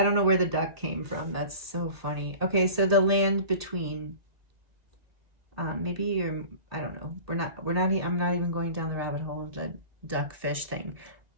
don't know where the duck came from. That's so funny. Okay, so the land between... maybe you're... I don't know. I'm not even going down the rabbit hole of the duck fish thing.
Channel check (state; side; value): late; left; 1.8 ms